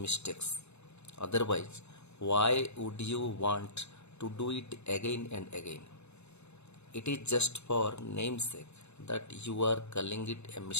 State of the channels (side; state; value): right; late; 0.81 ms